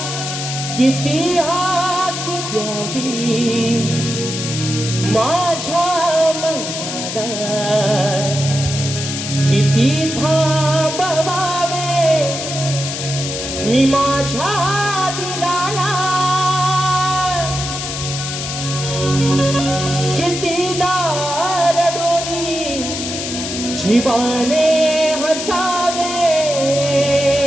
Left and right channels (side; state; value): left; noise; hiss, 5 dB below the sound